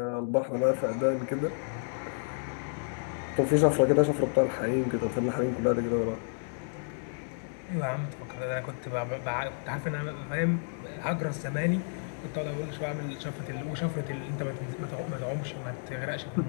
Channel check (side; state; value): right; silent; digital silence